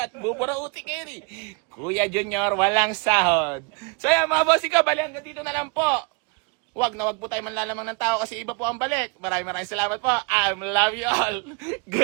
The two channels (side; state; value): left; quieter; 33.4 dB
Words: buburauti kayo ni Kuya Junior, walang sahod. So yan mga boss, ikaw, bali hanggang dito na lang po. Huwag po tayo manlalamang ng tao kasi iba po ang balik. Maraming salamat po. I love you all.